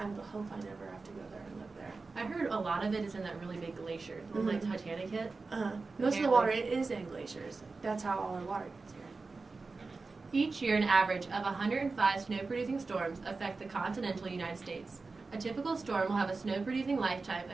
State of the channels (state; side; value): quieter; left; 4.0 dB